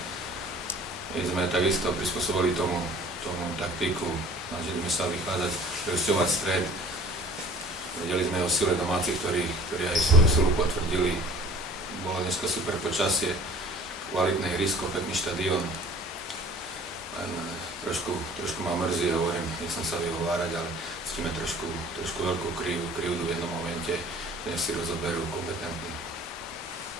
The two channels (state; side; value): normal; both; correlation 0.48